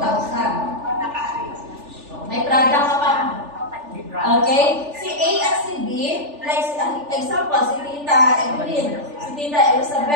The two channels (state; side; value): late; left; 3.4 ms